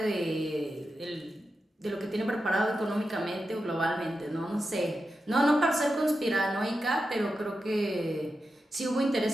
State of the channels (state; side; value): normal; both; correlation 0.90